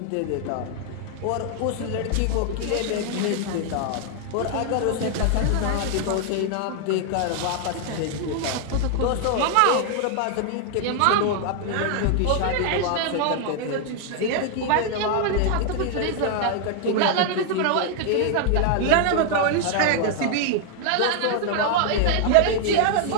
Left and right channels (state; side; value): different; both; correlation 0.00